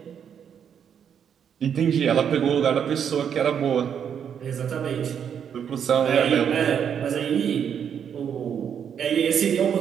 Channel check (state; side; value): quieter; left; 8.1 dB